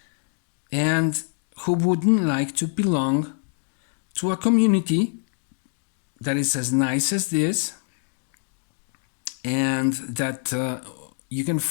And who wouldn't like to belong to a community that is as nice as this, and that you can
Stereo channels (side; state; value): right; silent; 57 dB below the other